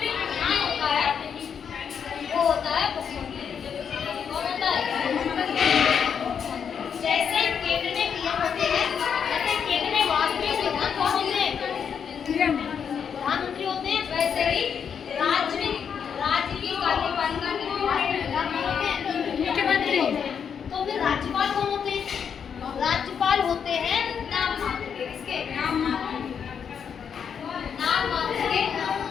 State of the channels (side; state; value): right; quieter; 7.3 dB